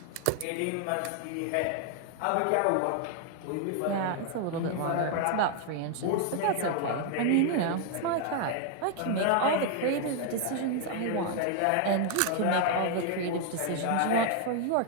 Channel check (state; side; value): different; both; correlation 0.00